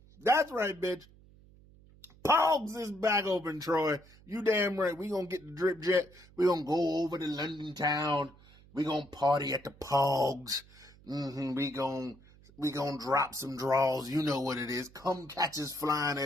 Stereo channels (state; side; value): noise; right; hum, 25 dB below the sound